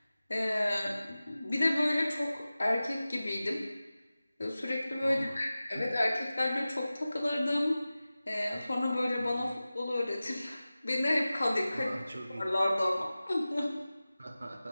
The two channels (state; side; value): inverted; both; correlation -0.96